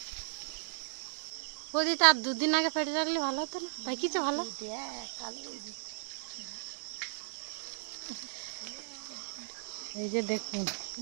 ওদি তার 2 দিন আগে পেড়ে রাখলে ভালো হতো না, তাই কিছু ভালো। এই যে দেখুন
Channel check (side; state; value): left; silent; 54 dB below the other